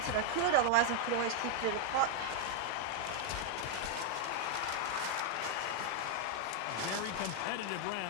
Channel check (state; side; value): different; both; correlation 0.00